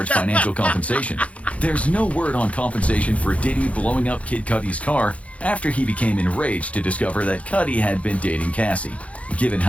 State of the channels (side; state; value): right; late; 0.064 ms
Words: financial compensation. There's no word on compensation for Diddy blowing up Kid Cudi's car after he became enraged to discover that Cudi had been dating Cassie. Given